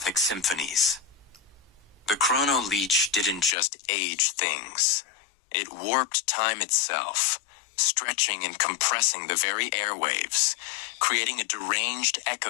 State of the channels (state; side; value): drops out; right; at 3.6 s